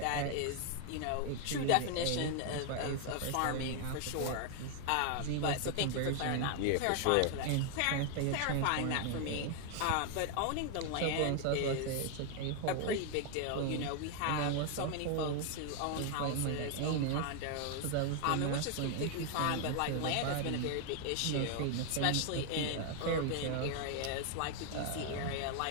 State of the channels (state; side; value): different; both; correlation 0.01